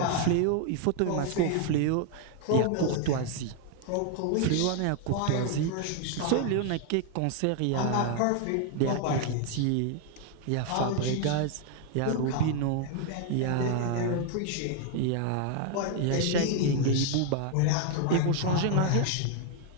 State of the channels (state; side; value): different; both; correlation 0.00